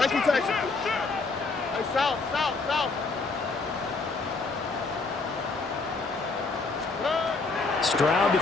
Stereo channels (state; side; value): quieter; right; 3.9 dB